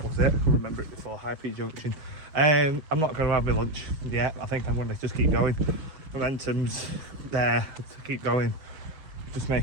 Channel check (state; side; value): late; left; 6.4 ms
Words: was it, I remember it before, High Peak Junction. I'm not going to have my lunch yet. I think I'm going to just keep going. Momentum's there to keep going. Just